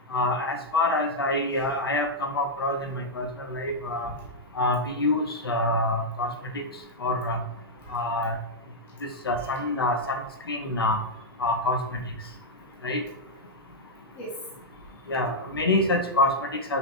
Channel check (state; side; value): normal; both; correlation -0.05